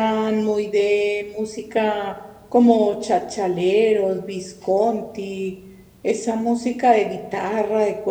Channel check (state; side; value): identical; both; correlation 1.00